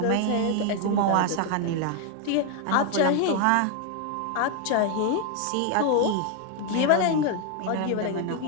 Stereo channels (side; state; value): both; different; correlation 0.01